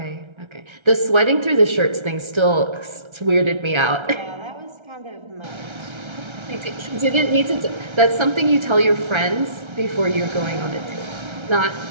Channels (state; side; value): late; left; 1.3 ms